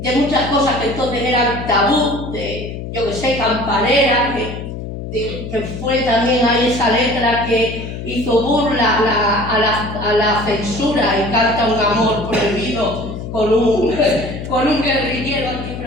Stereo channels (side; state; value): left; noise; hum, 8 dB below the sound